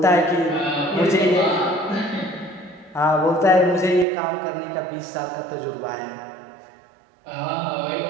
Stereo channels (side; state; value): left; drops out; at 4.0 s